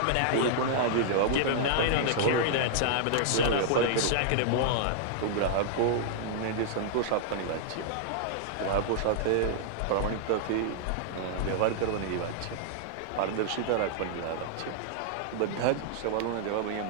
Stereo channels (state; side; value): different; both; correlation -0.01